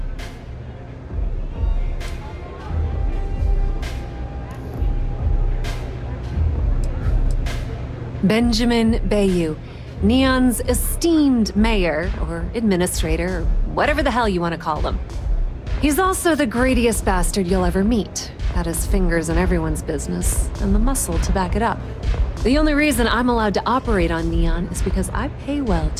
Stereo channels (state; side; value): identical; both; correlation 1.00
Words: Benjamin Bayou, Neon's esteemed mayor, or administrator, or whatever the hell you want to call him. He's also the greediest bastard you'll ever meet. Got his fingers in everyone's business, and the muscle to back it up. The only reason I'm allowed to operate on Neon is because I pay well